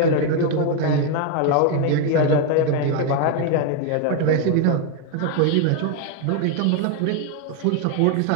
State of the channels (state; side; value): different; both; correlation 0.01